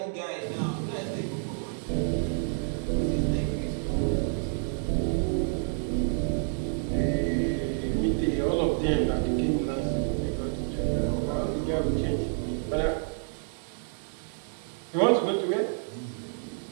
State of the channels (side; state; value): left; silent; digital silence